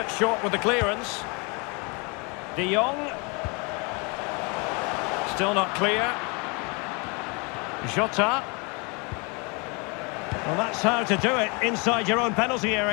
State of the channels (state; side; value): quieter; right; 31.1 dB